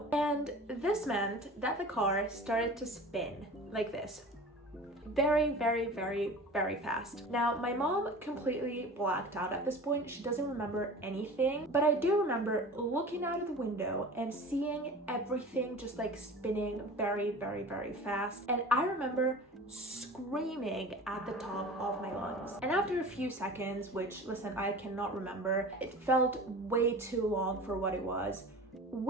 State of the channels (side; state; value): both; normal; correlation 0.38